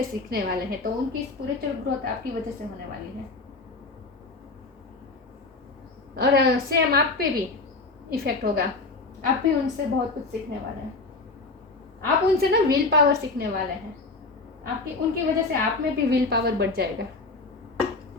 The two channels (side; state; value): right; quieter; 3.5 dB